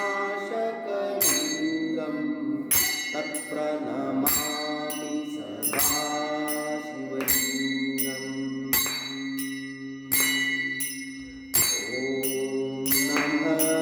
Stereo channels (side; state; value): both; identical; correlation 1.00